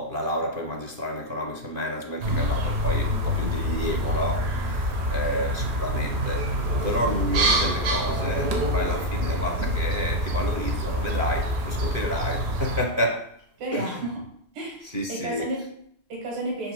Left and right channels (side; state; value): left; late; 2.5 ms